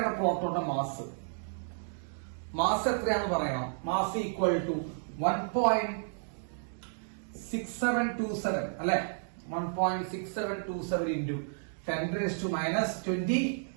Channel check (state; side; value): silent; left; digital silence